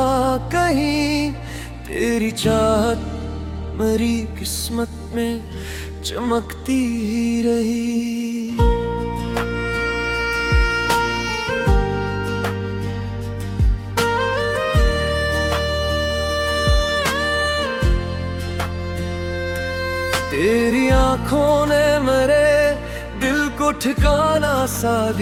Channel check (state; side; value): identical; both; correlation 1.00